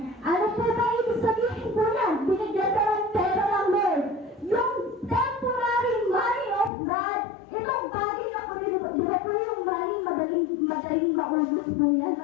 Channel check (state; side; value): drops out; right; at 6.7 s